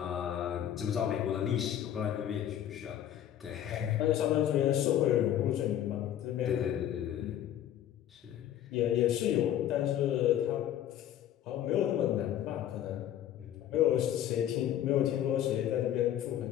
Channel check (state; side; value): quieter; right; 11.1 dB